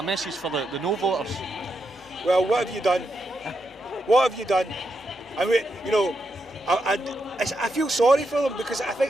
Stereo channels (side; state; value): both; normal; correlation 0.83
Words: message for the no voters? Well, what have you done? What have you done? I mean, you know, I feel sorry for them because I